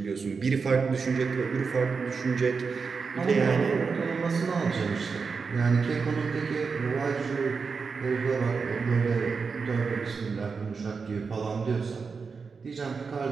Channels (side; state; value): left; quieter; 5.1 dB